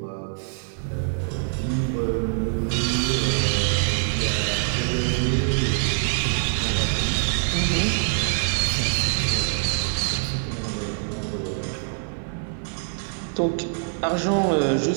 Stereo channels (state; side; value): silent; left; digital silence